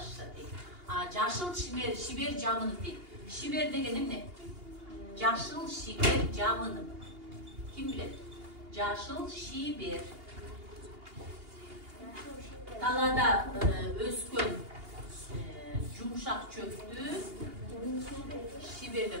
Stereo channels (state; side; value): late; left; 2.8 ms